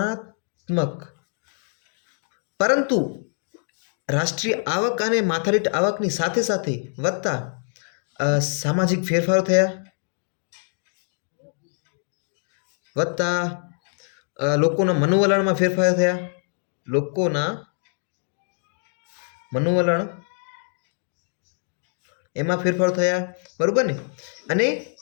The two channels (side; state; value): right; silent; 62 dB below the other